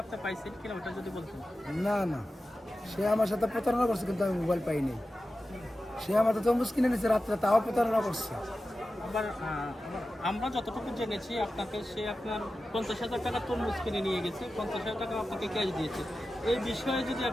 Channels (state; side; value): normal; both; correlation 0.93